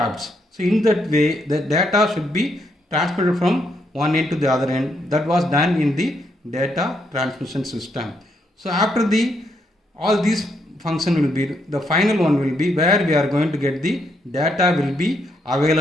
So in that way, the data should be transmitted from one end to the other end. That was done in the data transmission system. So after all these function will be, the final one will be where we are going to get the data will be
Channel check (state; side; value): normal; both; correlation 0.76